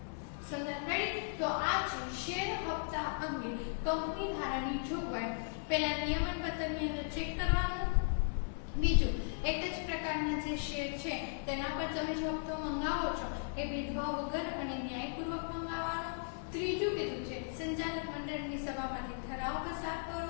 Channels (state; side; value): silent; right; 53 dB below the other